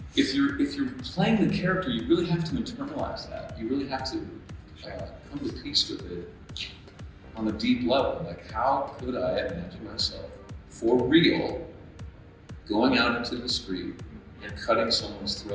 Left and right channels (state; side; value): identical; both; correlation 1.00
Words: you're playing the character, you really have to internalize that. You really have to come to peace with it on a deep level. Like, how could I imagine myself for real going out into the street and cutting someone's